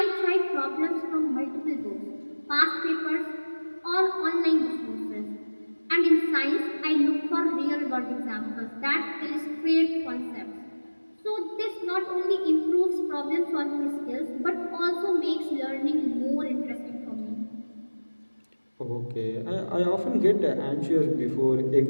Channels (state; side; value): inverted; both; correlation -1.00